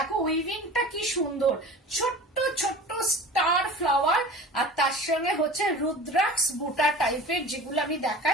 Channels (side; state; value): both; normal; correlation 0.38